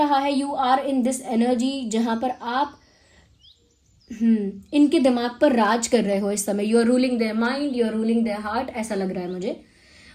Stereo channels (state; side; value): identical; both; correlation 1.00